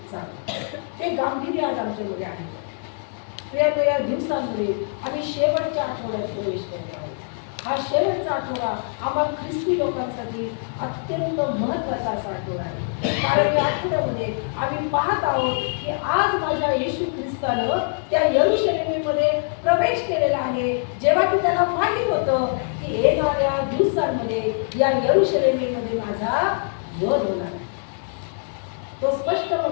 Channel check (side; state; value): right; silent; 63 dB below the other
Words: जावं. ते गांभीर्य आज आमच्यामध्ये आहे. या दिवसांमध्ये आम्ही शेवटच्या आठवड्यात प्रवेश करत आहोत. हा शेवटचा आठवडा आम्हा ख्रिस्ती लोकांसाठी अत्यंत महत्त्वाचा असा आठवडा आहे. कारण या आठवड्यामध्ये आम्ही पाहत आहोत की आज माझ्या येशू ख्रिस्तानं त्या यरूशलेमेमध्ये प्रवेश केलेला आहे. जेव्हा की त्याला माहित होतं की येणाऱ्या दिवसांमध्ये या यरूशलेमेमध्ये माझा वध होणार आहे. तो स्पष्ट